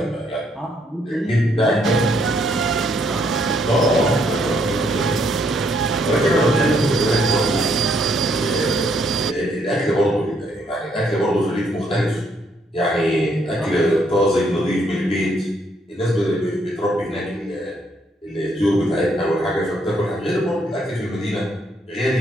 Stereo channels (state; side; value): normal; both; correlation 0.71